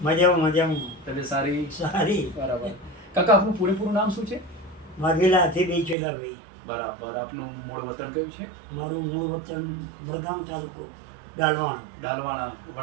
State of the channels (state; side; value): drops out; left; at 6.0 s